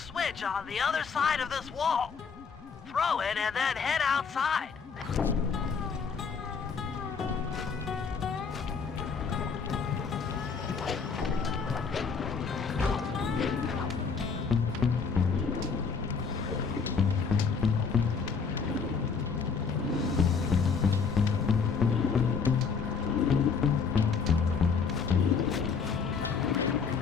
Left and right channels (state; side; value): quieter; right; 5.6 dB